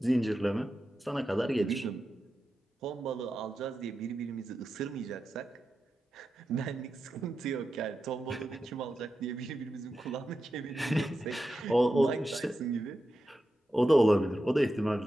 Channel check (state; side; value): normal; both; correlation 0.90